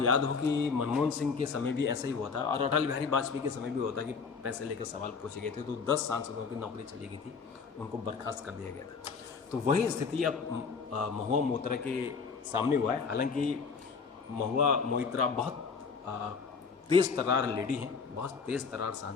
याद हो कि मनमोहन सिंह के समय भी ऐसा ही हुआ था और अटल बिहारी वाजपेयी के समय भी हुआ था कि पैसे लेकर सवाल पूछे गए थे, तो 10 सांसदों की नौकरी चली गई थी, उनको बर्खास्त कर दिया गया था। तो वही स्थिति अब महुआ मोइत्रा के सामने हुआ है। हालांकि महुआ मोइत्रा बहुत तेज़ तर्रार लेडी हैं, बहुत तेज़ तर्रार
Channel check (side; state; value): right; quieter; 5.3 dB